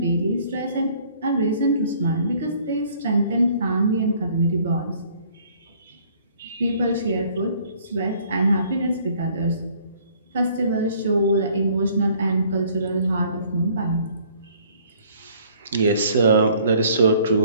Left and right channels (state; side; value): inverted; both; correlation -0.58